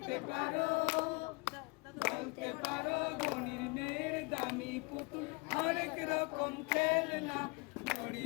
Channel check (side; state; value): right; quieter; 28.5 dB